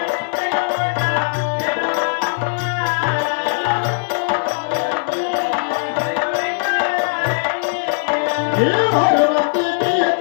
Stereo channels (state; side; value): silent; right; 67 dB below the other